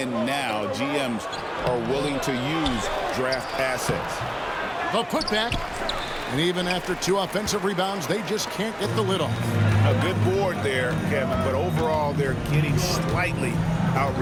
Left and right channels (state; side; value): identical; both; correlation 1.00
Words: now, GMs are willing to use draft assets. The putback. And even after 2 offensive rebounds, they just can't get the lid off. A good board there, Kevin, but overall they're getting slightly